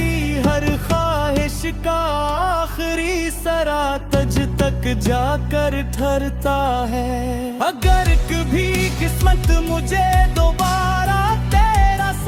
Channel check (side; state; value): both; identical; correlation 1.00